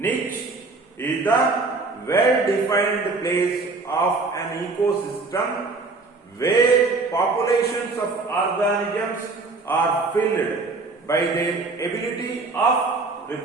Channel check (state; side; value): quieter; left; 3.8 dB